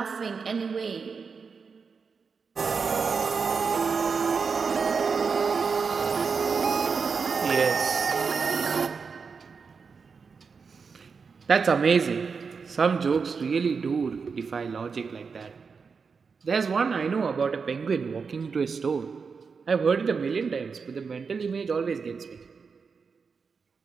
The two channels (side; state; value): left; quieter; 5.3 dB